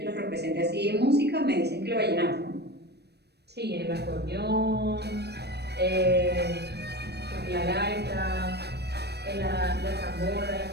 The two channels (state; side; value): late; left; 0.48 ms